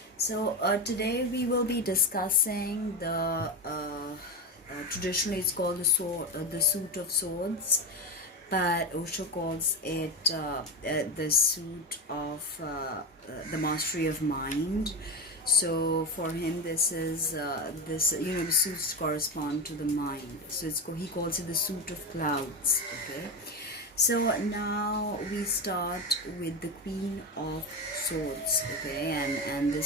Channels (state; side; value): normal; both; correlation 0.18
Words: So today we will be discussing traditionally it's called the Suit of Swords, but Osho calls it the Suit of the Mastery of Mind. So for him, this is the suits correspond to the mind. So he calls it the Suit of Clouds. Okay. So now we start with the Queen of Swords. Okay, and